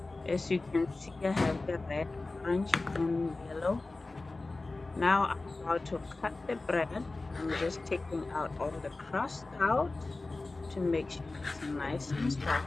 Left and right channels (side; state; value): right; quieter; 3.3 dB